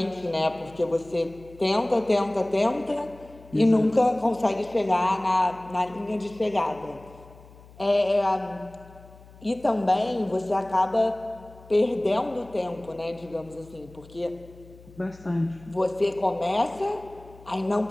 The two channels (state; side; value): noise; left; hum, 22 dB below the sound